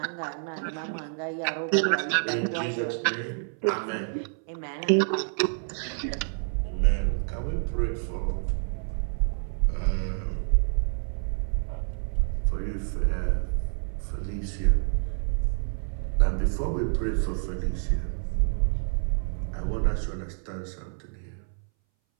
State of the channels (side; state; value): left; silent; 59 dB below the other